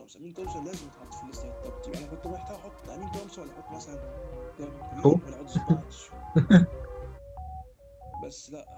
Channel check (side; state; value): both; identical; correlation 1.00